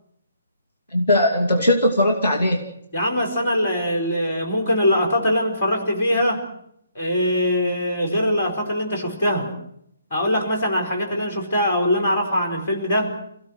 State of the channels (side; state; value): both; inverted; correlation -0.69